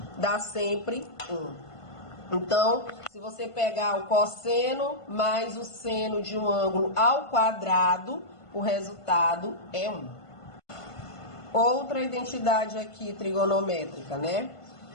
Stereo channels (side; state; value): right; late; 1.5 ms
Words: Dá sempre 1. Então, se você pegar o cosseno mais o seno de um ângulo ao quadrado, o resultado é 1. Outra identidade aqui trigonométrica, né?